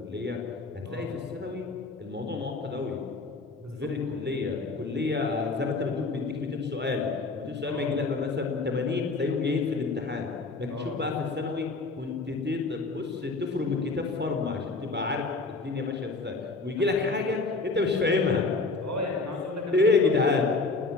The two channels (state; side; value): quieter; right; 3.7 dB